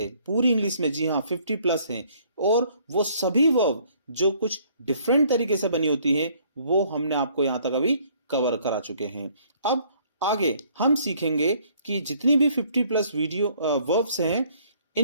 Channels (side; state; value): both; inverted; correlation -0.62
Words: पूरी इंग्लिश में। जी हां, 50 प्लस है। और वो सभी वर्ब जो कुछ डिफरेंट तरीके से बनी होती हैं, वो हमने आपको यहां तक अभी कवर करा चुके हैं। अब आगे हम सीखेंगे कि जितनी भी 50 प्लस वीडियो वर्ब्स हैं,